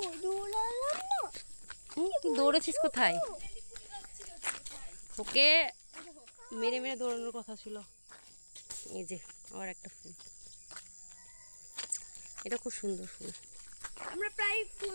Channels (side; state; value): both; inverted; correlation -1.00